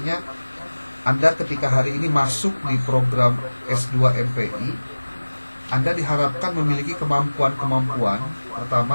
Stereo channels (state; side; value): inverted; both; correlation -1.00